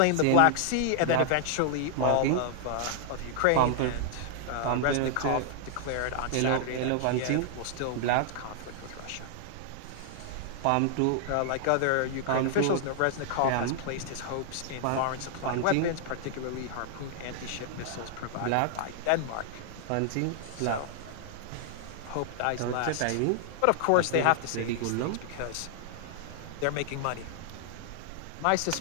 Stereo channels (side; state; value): both; different; correlation 0.00